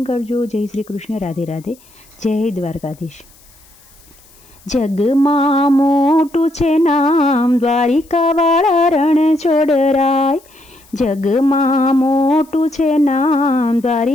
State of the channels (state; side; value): noise; left; hiss, 28 dB below the sound